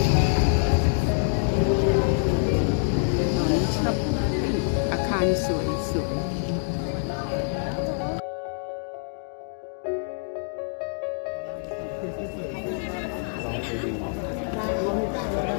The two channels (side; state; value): right; silent; digital silence